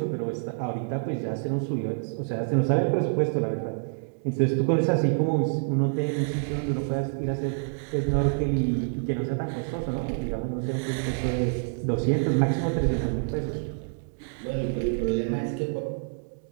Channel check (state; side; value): silent; left; digital silence